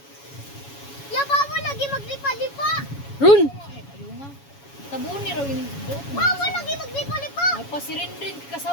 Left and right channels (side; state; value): right; late; 7.2 ms